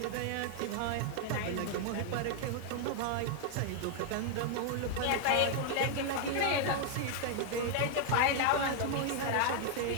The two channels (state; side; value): different; both; correlation 0.00